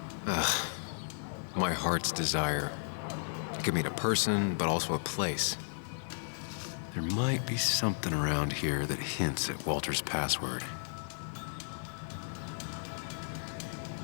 My heart's desire. It could mean a person, but also a place. There might be something around here that hints at Walter's password.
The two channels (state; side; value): silent; right; digital silence